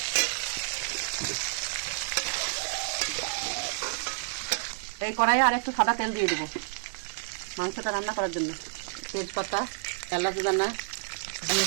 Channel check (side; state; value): left; silent; 58 dB below the other